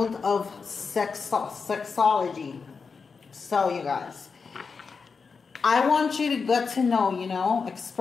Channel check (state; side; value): quieter; right; 5.1 dB